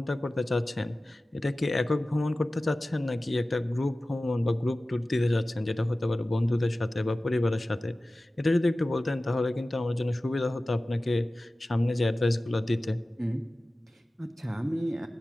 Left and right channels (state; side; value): normal; both; correlation 0.96